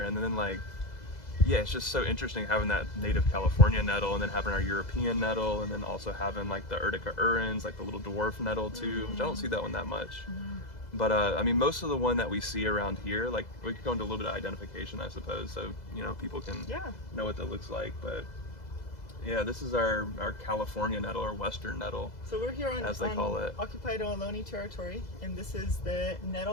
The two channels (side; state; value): right; late; 2.0 ms